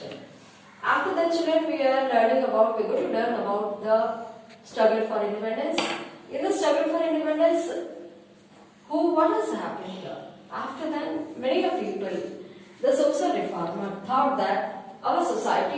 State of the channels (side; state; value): both; identical; correlation 1.00